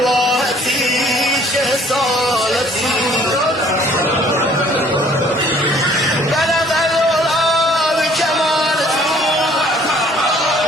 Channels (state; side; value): normal; both; correlation 0.58